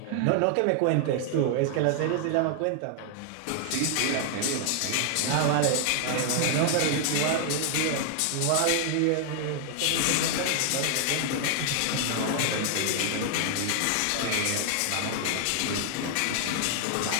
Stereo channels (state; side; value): different; both; correlation 0.00